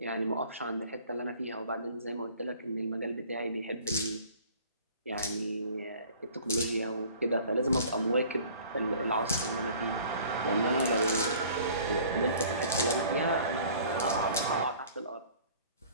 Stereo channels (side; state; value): both; inverted; correlation -0.50